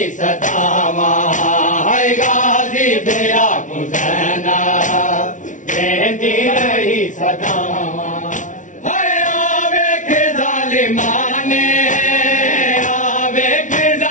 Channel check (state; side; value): late; right; 0.37 ms